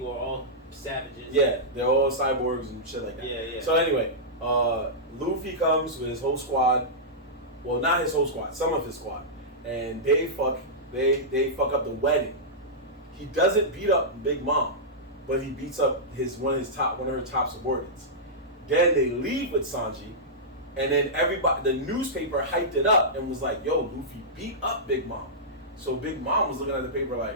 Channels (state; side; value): normal; both; correlation -0.13